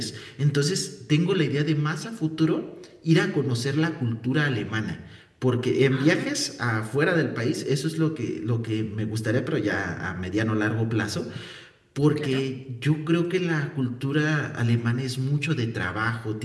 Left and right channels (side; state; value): both; identical; correlation 1.00